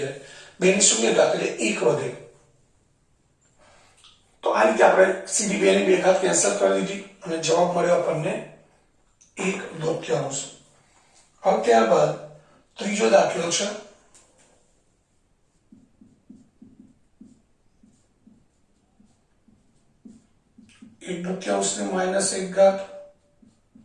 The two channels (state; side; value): identical; both; correlation 1.00